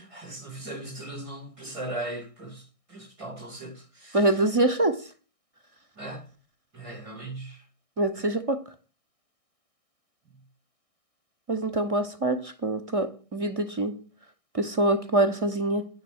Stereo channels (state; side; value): late; left; 1.6 ms